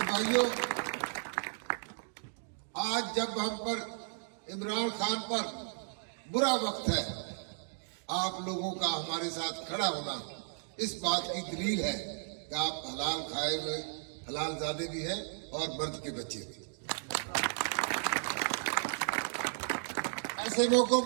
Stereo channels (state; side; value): silent; left; digital silence